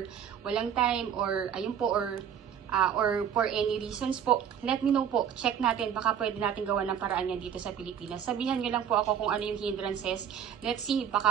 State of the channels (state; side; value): quieter; left; 8.6 dB